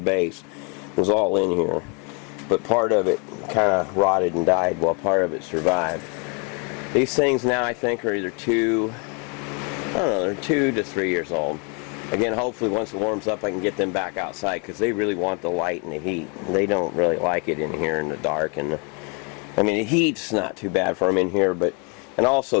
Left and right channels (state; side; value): quieter; right; 34.6 dB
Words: It was all in here, but part of it kind of rotted and died while part of it survived. These things now, I think, are either they're 2 to 3 years old. Again, hopefully once it warms up I can get them back outside, because they really want the light and the heat. They don't really like it in here in the dark. And I mean, the heat's not too bad for them in here, but and